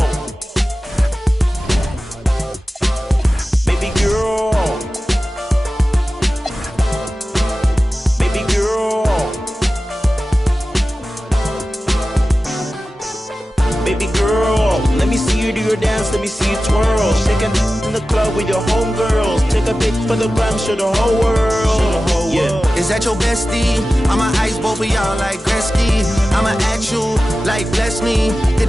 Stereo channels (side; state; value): both; normal; correlation 0.95